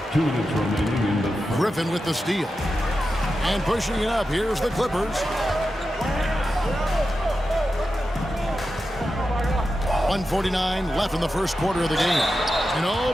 2 minutes remaining in the Griffin with the steal. And pushing it up, here's the Clippers. 1:49 left in the first quarter of the game. And oh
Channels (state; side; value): normal; both; correlation 0.90